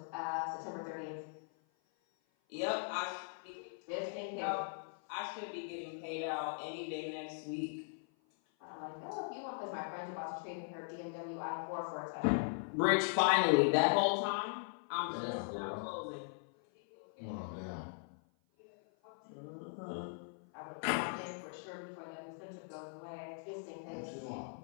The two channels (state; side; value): silent; right; 51 dB below the other